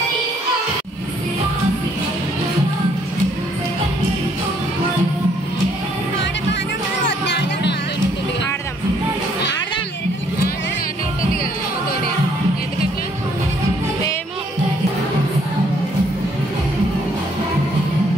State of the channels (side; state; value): both; normal; correlation 0.66